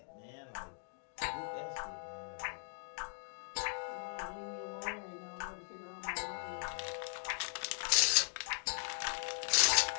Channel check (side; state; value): right; silent; digital silence